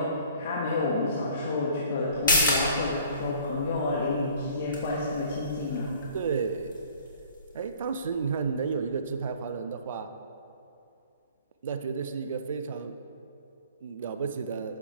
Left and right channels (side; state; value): both; inverted; correlation -0.52